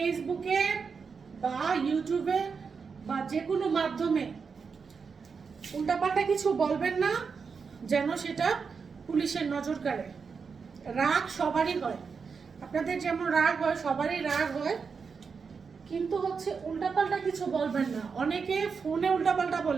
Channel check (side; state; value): left; quieter; 5.5 dB